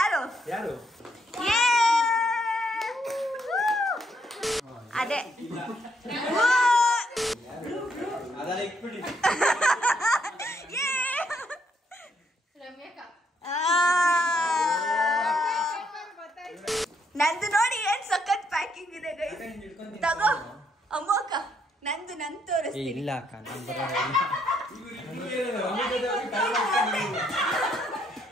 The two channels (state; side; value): normal; both; correlation 0.73